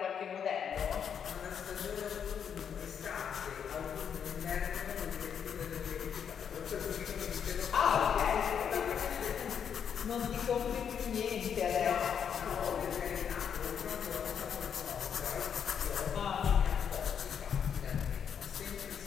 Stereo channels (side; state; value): right; quieter; 7.8 dB